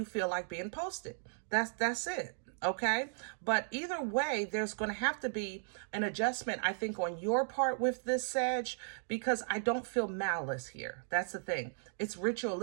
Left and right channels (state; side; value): silent; left; digital silence